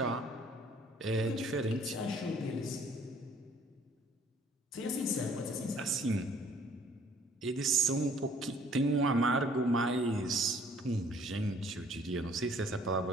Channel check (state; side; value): normal; both; correlation 0.58